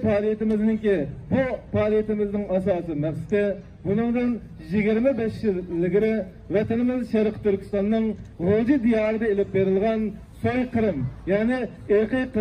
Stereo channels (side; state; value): both; identical; correlation 1.00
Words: faaliyetimizin asası maqsadi bunun 25 yıl ilgari vatanimiz Şarkı Türkistan'ın G'o'ji diyarida ilib berilgan soykırım, yani irqiy